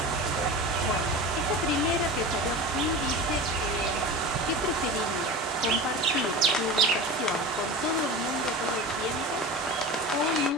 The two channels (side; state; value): both; normal; correlation 0.30